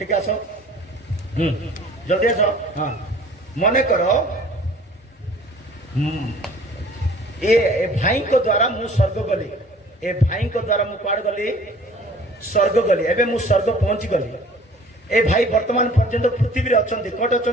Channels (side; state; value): both; normal; correlation 0.50